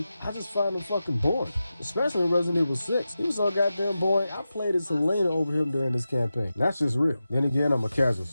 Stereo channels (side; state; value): both; inverted; correlation -0.92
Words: I just find him fucking boring. Especially in Resident Evil 6. He was so goddamn boring, I played as Selena over him during this campaign. That's just real. Then again, I'm a casual,